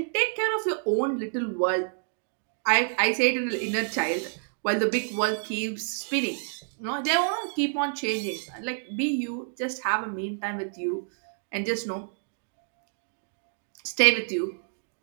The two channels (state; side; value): silent; left; digital silence